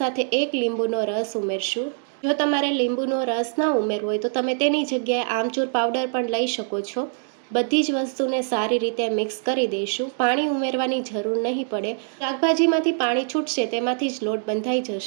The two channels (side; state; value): left; silent; digital silence